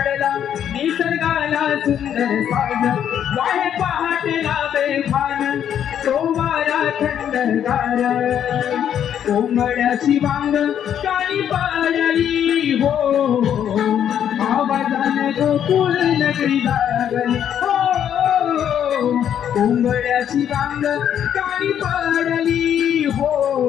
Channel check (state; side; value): quieter; right; 9.5 dB